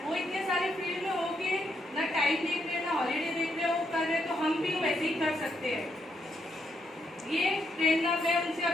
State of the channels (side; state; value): both; normal; correlation 0.78